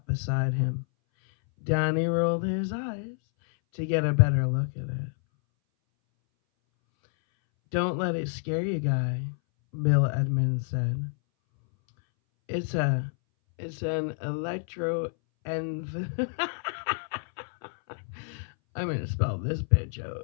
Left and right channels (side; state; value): right; silent; 59 dB below the other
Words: beside him. Danny rolled his eyes to get a better look at it. Don't let it scare you, guy, Bill Edmonds said. It's an electro env. I'm gonna spell this bitch